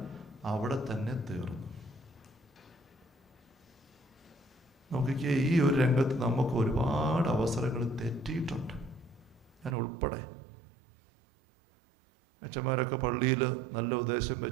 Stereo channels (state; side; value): drops out; left; at 9.8 s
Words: അവിടെ തന്നെ തീർന്നു. നോക്കിക്കേ, ഈ ഒരു രംഗത്ത് നമുക്ക് ഒരുപാട് അവസരങ്ങൾ തെറ്റിയിട്ടുണ്ട്, ഞാൻ ഉൾപ്പെടെ. അച്ഛന്മാരൊക്കെ പള്ളിയിൽ നല്ല ഉദ്ദേശം